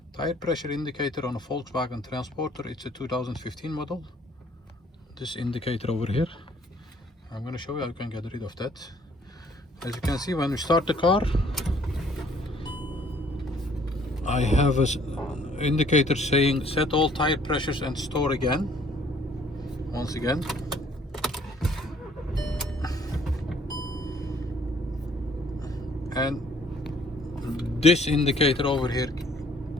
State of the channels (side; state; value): both; normal; correlation 0.60